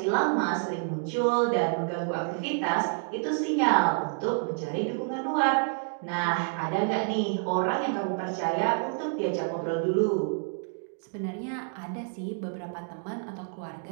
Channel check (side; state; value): left; silent; digital silence